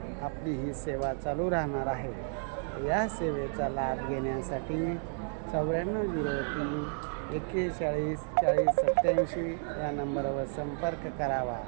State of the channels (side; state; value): left; silent; 56 dB below the other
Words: आपली ही सेवा चालू राहणार आहे. या सेवेचा लाभ घेण्यासाठी 9403 41 40 87 या नंबरवर संपर्क करावा.